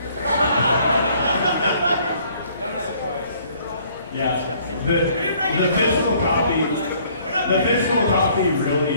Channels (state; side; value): inverted; both; correlation -0.60